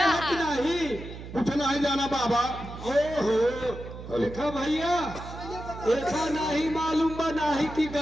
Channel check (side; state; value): right; noise; hum, 12 dB below the sound